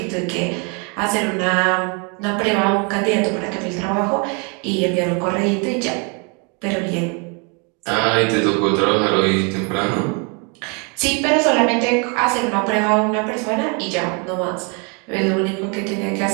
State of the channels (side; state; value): left; quieter; 34.3 dB